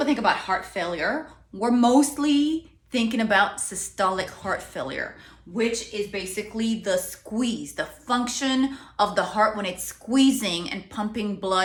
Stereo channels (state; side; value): identical; both; correlation 1.00